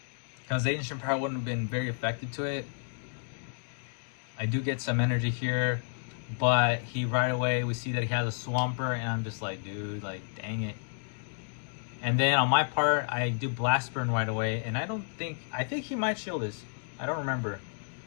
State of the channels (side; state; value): right; silent; digital silence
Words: because Ancient Power wouldn't have been very effective to it. I do get some energy here, but he right away, we see that he has a Swampert, and I'm just like, dude, like, dang it. And then on my part, I do Blast Burn right away, and I think he might shield this. I don't remember,